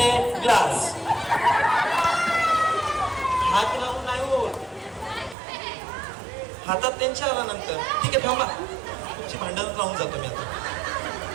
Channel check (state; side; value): drops out; left; at 5.4 s